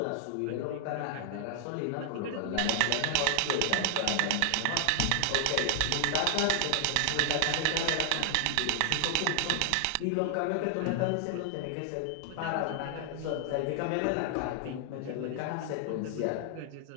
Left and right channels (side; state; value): both; different; correlation 0.00